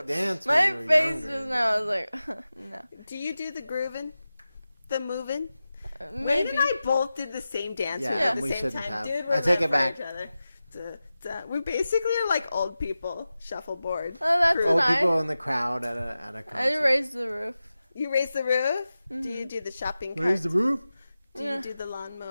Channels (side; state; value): both; inverted; correlation -0.94